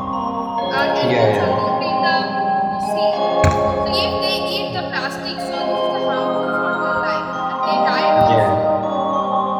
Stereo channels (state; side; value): identical; both; correlation 1.00